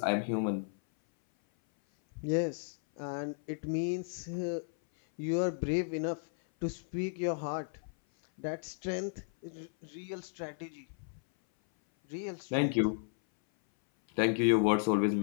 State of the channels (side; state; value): right; silent; 55 dB below the other